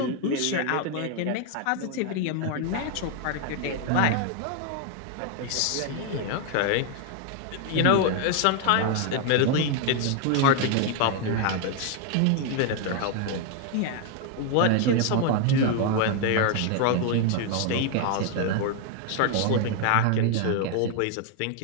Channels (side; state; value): both; different; correlation 0.01